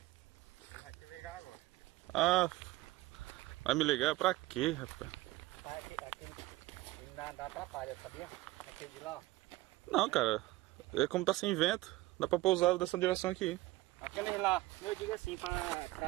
Vai te ligar agora. Ah, vai me ligar pra quê, rapaz? Aquele dá atrapalha, sabia? Aquele de lá, ó. Não, cara. É como tá sem vento. Dá pra pousar dessa direção aqui. Aquele lá, eu digo assim,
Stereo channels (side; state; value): left; quieter; 18.7 dB